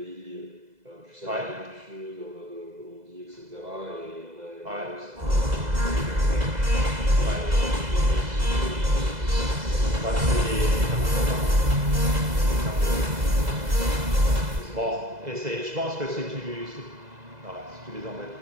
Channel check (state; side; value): late; left; 2.0 ms